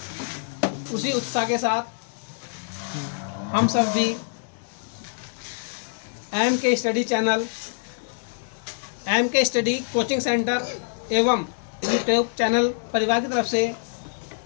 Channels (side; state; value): right; silent; digital silence